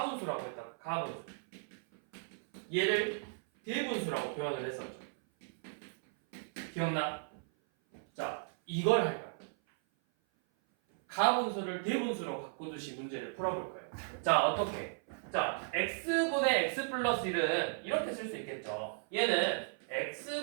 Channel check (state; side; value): silent; left; 54 dB below the other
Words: 했다가 가분수. 얘를 대분수라고 표현을 했었죠. 기억나? 자, 이걸 할 거야. 가분수를 대분수로 바꾸듯이 문제를 풀어볼 거예요. 자, 어떻게? 자, x분의 x 플러스 1은 이렇게 쓸 수 있겠죠. 얘는